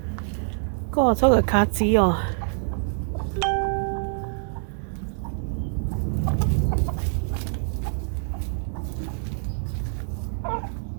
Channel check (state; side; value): silent; left; digital silence